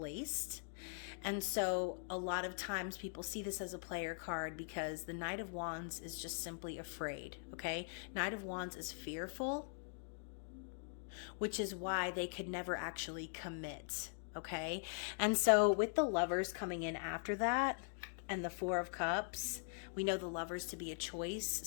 And so a lot of times people see this as a player card because the Knight of Wands is just simply afraid, okay? Knight of Wands is fearful, which is why they could never actually commit, okay? And so with the Lovers coming in after that, and the Four of Cups, we know the Lovers to be a choice,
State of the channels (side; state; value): right; silent; digital silence